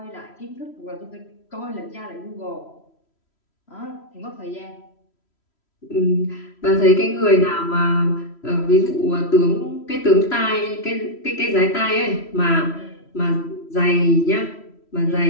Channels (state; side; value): late; right; 3.1 ms